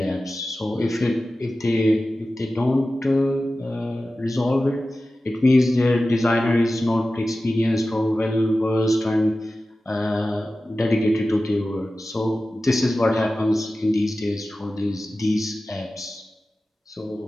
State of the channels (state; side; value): normal; both; correlation 0.95